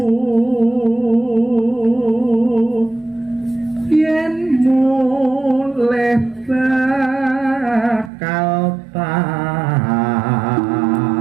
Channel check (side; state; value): left; drops out; at 8.1 s